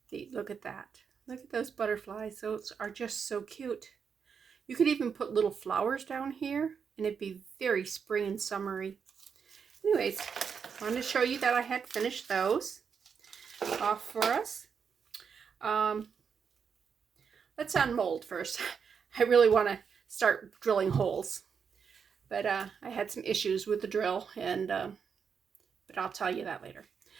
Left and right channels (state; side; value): quieter; left; 6.5 dB